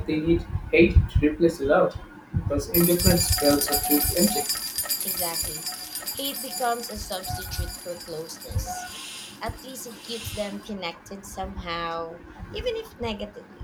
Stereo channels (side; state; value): both; identical; correlation 1.00